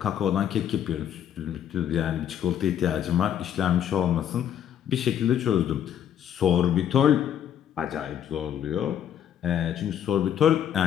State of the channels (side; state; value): right; quieter; 9.7 dB